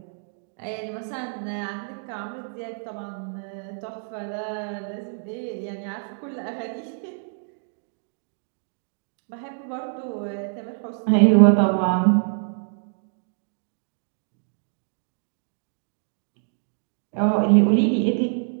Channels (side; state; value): left; silent; digital silence